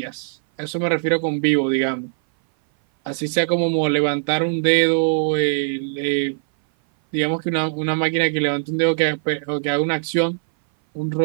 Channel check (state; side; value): silent; left; 59 dB below the other